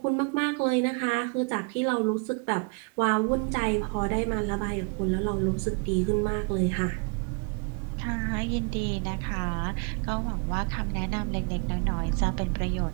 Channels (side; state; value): left; quieter; 34.5 dB